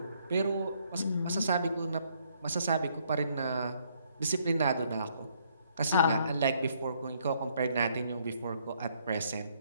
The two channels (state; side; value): inverted; both; correlation -0.68